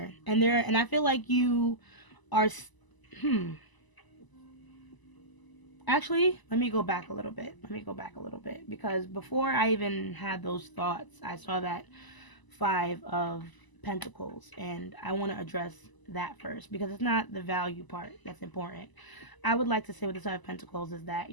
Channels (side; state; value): right; late; 1.0 ms